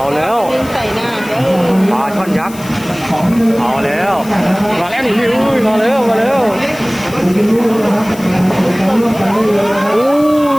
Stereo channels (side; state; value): left; noise; hiss, 18 dB below the sound